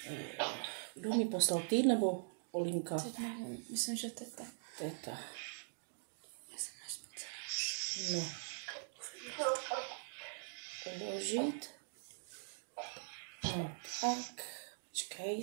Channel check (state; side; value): silent; left; digital silence